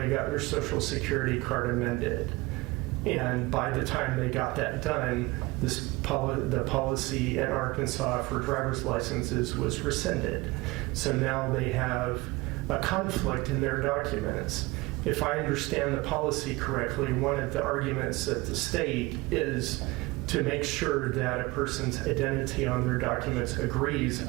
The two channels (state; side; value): quieter; left; 22.2 dB